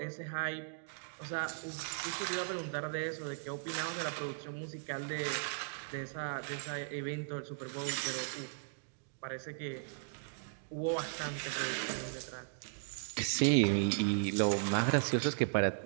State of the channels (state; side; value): silent; left; digital silence